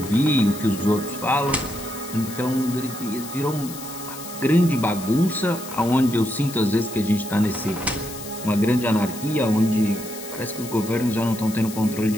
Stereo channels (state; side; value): noise; left; hiss, 13 dB below the sound